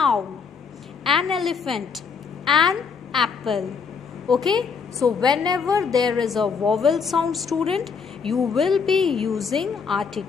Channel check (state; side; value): quieter; right; 5.7 dB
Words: an elephant, an apple. Okay, so whenever there is a vowel sound, student, you will be using